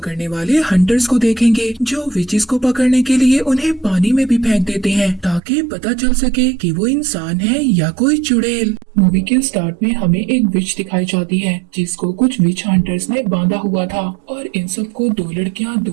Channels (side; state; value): left; drops out; at 5.4 s